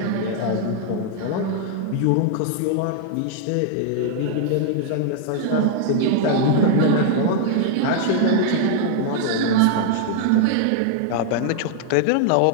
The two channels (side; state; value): both; different; correlation -0.01